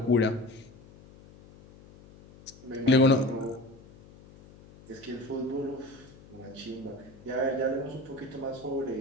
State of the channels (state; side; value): noise; left; hum, 22 dB below the sound